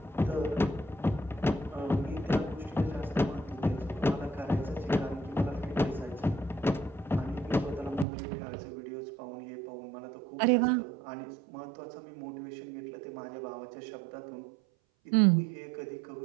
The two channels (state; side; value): drops out; left; at 8.1 s